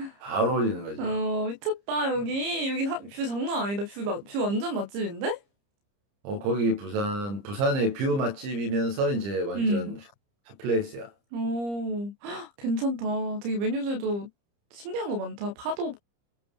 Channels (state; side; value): late; left; 30 ms